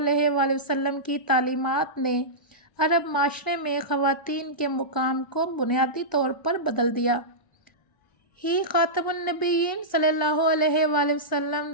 وآلہ وسلم کی تعلیمات نے عرب معاشرے میں خواتین کے مقام کو بنیادی طور پر بدل دیا. ہی خاتم النبیین صلی اللہ علیہ وآلہ وسلم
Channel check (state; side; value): late; right; 1.0 ms